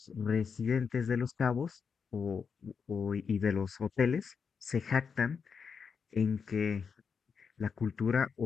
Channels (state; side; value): quieter; right; 6.0 dB